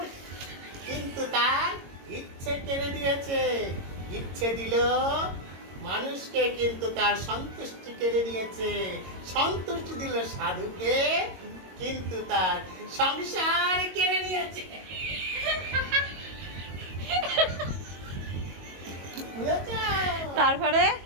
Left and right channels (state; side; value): late; left; 22 ms